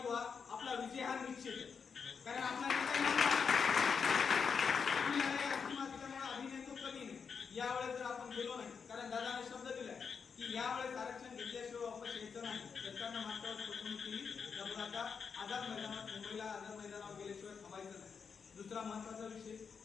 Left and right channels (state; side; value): quieter; right; 6.1 dB